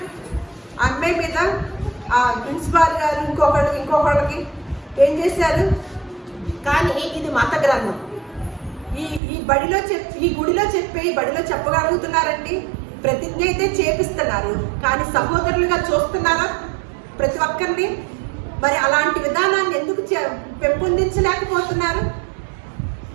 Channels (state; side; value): drops out; left; at 9.2 s